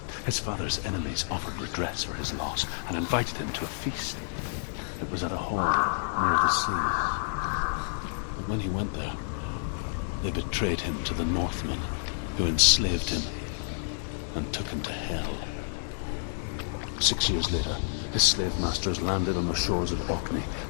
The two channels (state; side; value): silent; right; digital silence